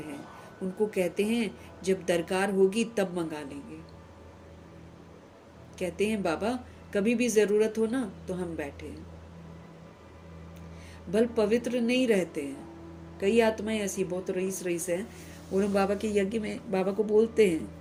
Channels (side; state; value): both; identical; correlation 1.00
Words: उनको कहते हैं जब दरकार होगी तब मंगा लेंगे। कहते हैं बाबा कभी भी जरूरत हो ना तो हम बैठे हैं। भल पवित्र नहीं रहते हैं। कई आत्माएं ऐसी बहुत रईस हैं, और हम बाबा के यज्ञ में बाबा को बोलते